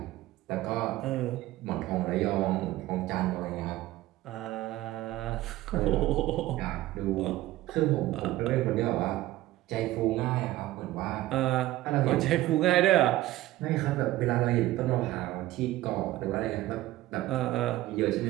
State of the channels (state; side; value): quieter; left; 16.1 dB